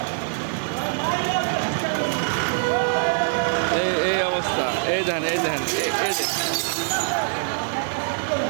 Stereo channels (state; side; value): silent; left; 56 dB below the other